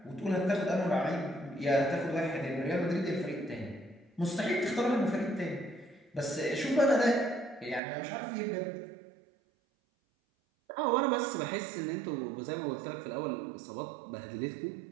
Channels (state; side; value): drops out; left; at 7.8 s